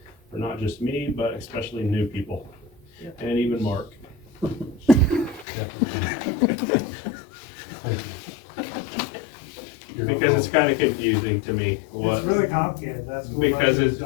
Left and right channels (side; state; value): right; drops out; at 5.5 s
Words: for not just me, but especially new people, and even Mark. Because it's kind of confusing to me what. It's really complicated, that's. Because